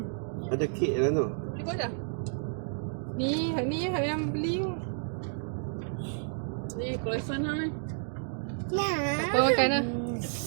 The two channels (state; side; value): silent; left; digital silence